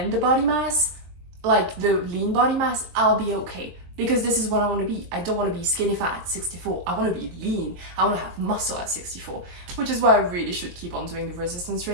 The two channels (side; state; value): left; late; 23 ms